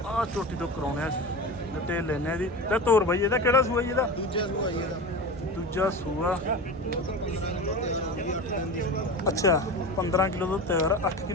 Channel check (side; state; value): both; normal; correlation 0.28